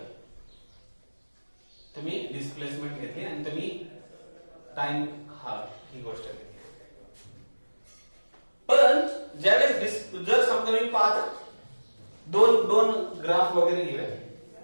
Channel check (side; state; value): both; inverted; correlation -1.00